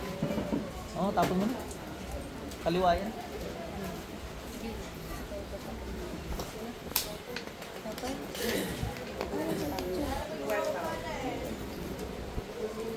Oo, tapon mo na. Kaliwa yan.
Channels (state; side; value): identical; both; correlation 1.00